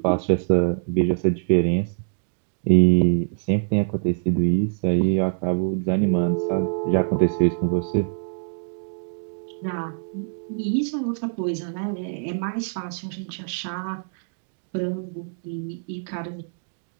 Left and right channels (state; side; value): silent; left; digital silence